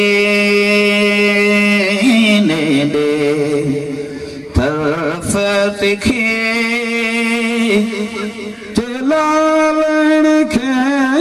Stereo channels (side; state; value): both; identical; correlation 1.00